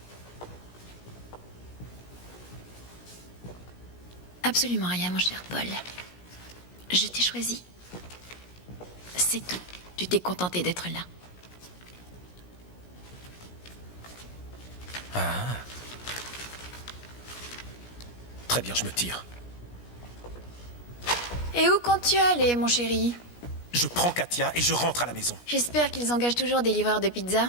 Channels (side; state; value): right; late; 17 ms